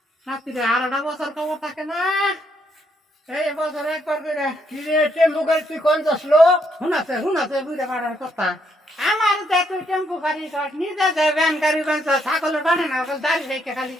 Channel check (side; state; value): both; normal; correlation 0.74